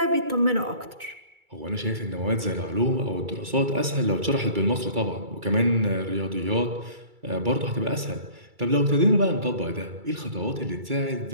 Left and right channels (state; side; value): late; left; 2.3 ms